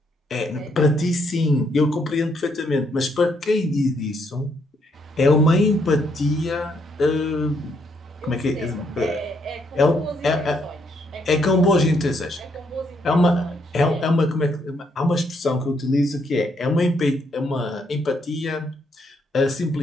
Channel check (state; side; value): normal; both; correlation 0.74